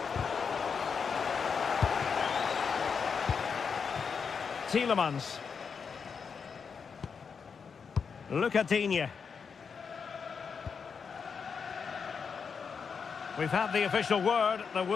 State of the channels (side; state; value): right; quieter; 6.0 dB